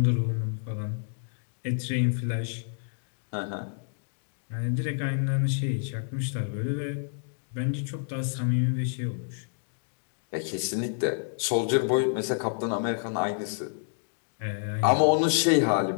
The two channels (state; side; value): silent; right; digital silence